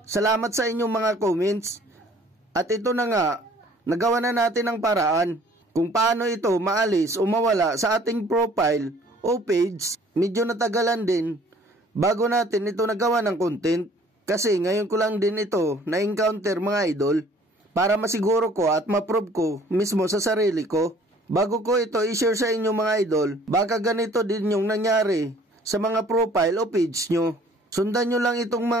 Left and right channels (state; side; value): normal; both; correlation 0.55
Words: Salamat sa inyong mga comments. At ito na nga, nagawa na natin ang paraan kung paano ito maalis o mawala sa ating profile o page. Medyo natagalan din bago natin ito nagawa ng content. Kasi ngayon ko lang din ito na-encounter mga idol para masiguro ko at ma-prove ko mismo sa sarili ko. Bago ko ito i-share sa inyo mga idol, baka ganito din yung nangyari sa mga profile o page nyo. Sundan nyo lang itong